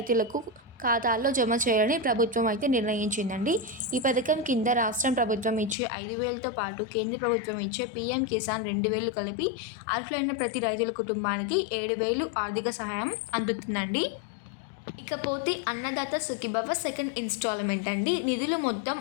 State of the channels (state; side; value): drops out; right; at 5.8 s